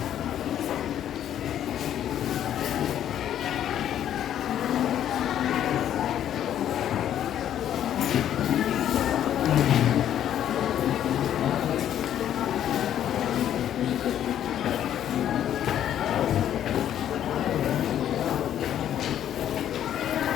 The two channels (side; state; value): right; quieter; 10.7 dB